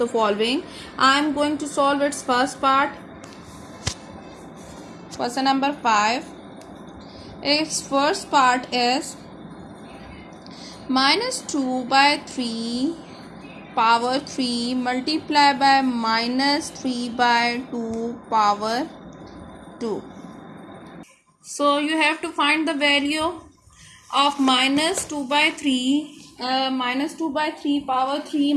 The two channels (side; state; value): both; identical; correlation 1.00